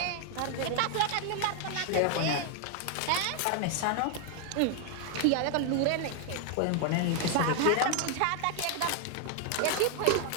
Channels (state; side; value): different; both; correlation 0.00